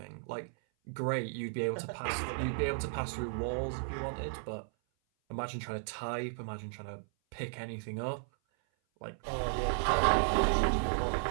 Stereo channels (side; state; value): left; silent; 55 dB below the other